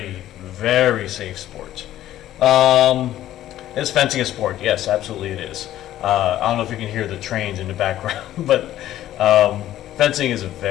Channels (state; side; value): quieter; right; 13.1 dB